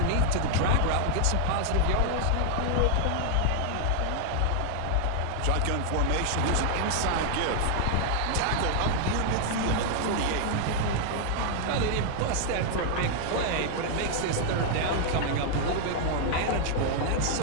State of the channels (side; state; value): both; different; correlation 0.00